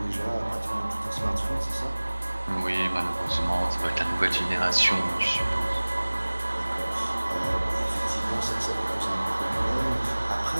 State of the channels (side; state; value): both; inverted; correlation -1.00